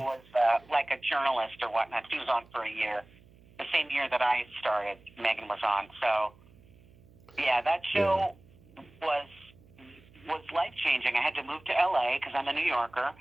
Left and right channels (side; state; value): right; noise; hum, 26 dB below the sound